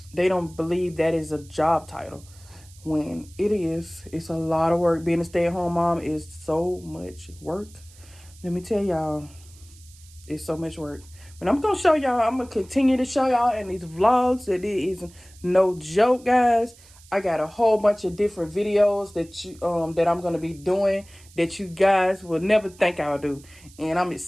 they don't believe that is a job title when it is. It's a lot of work. Being a stay-at-home mom is so much work. Let me tell y'all, it's so much work. But I'm going to continue to show y'all in these vlogs that it is no joke, guys. I got a whole bunch of different videos that I'm going to be doing that you guys will never think I'll do. And I'm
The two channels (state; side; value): noise; right; hiss, 24 dB below the sound